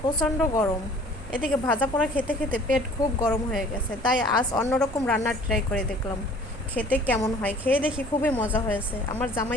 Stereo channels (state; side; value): normal; both; correlation 0.51